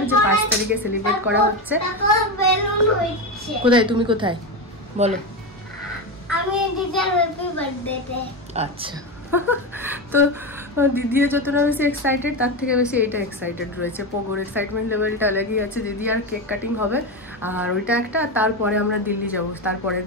যে 5 তারিখে সেলিব্রেট করা হচ্ছে। কোথায় তুমি কোথায় বলো? আমি দিদির হ্যাপি বার্থডেতে। আচ্ছা তো দিদি যতটা বেশি এক্সাইটেড তার থেকে বেশি এইটা এক্সাইটেড রয়েছে। পোগোর এক্সাইটমেন্ট লেভেলটা আলাদাই আছে। দিদি আর কেক কাটিং হবে আর ওইটা একটা, তারপরে আমরা দিল্লি যাব তারপরের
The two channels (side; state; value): both; normal; correlation 0.16